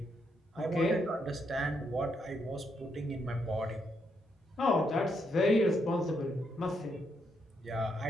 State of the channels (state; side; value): normal; both; correlation 0.78